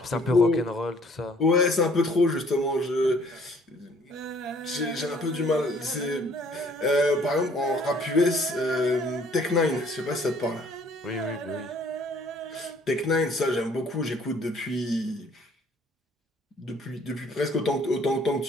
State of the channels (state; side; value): normal; both; correlation 0.59